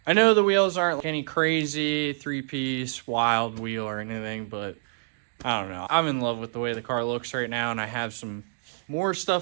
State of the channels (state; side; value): silent; left; digital silence